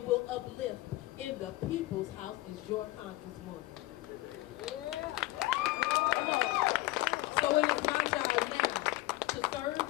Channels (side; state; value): right; quieter; 18.2 dB